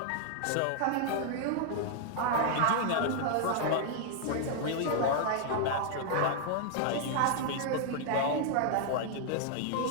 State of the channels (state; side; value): different; both; correlation 0.00